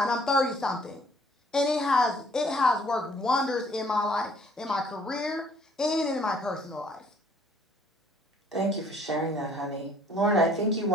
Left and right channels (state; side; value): normal; both; correlation 0.59